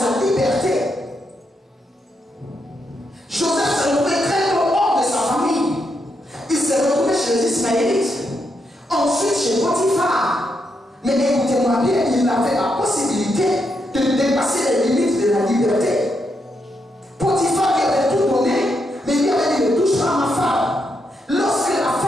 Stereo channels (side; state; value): both; normal; correlation 0.81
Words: liberté. Joseph s'est retrouvé très hors de sa famille. Il s'est retrouvé chez les Ismaélites. Ensuite chez Potiphar. Mais écoutez-moi bien, il avait la possibilité de dépasser les limites de la liberté. Potiphar lui avait tout donné, mais il lui avait dit ne touche pas à ma femme. Lorsque la